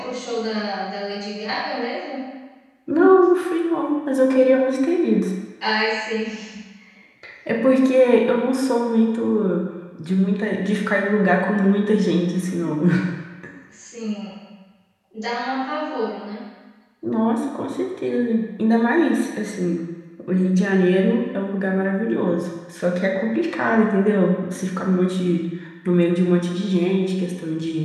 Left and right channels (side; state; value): both; identical; correlation 1.00